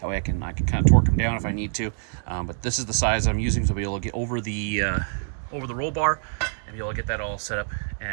That way I can kind of torque them down if I need to. But this is the size I'm using to be able to get over the roll bar and be able to get that all set up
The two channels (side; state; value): left; silent; digital silence